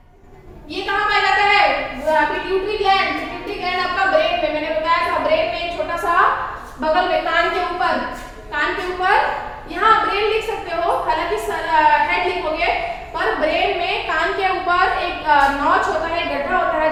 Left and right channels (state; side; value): identical; both; correlation 1.00